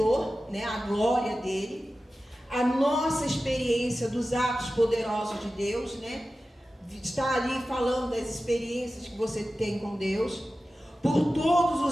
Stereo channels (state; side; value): normal; both; correlation 0.94